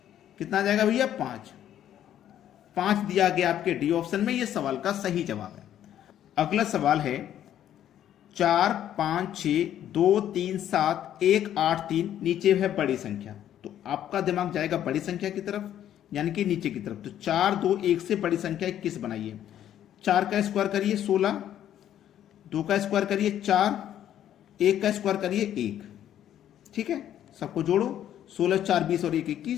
कितना आ जाएगा भैया? 5 दिया गया आपके डी ऑप्शन में, यह सवाल का सही जवाब है। अगला सवाल है, 4 5 6 2 3 7 1 8 3, नीचे है बड़ी संख्या, तो आपका दिमाग जाएगा बड़ी संख्या की तरफ, यानी कि नीचे की तरफ। तो 4 2 1 से बड़ी संख्या 21 बनाइए। 4 का स्क्वायर करिए 16, 2 का स्क्वायर करिए 4, 1 का स्क्वायर करिए 1, ठीक है। सबको जोड़ो, 16 4 20 और 1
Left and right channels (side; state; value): right; quieter; 11.0 dB